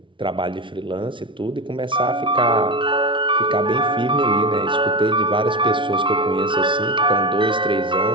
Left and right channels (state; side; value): late; left; 0.24 ms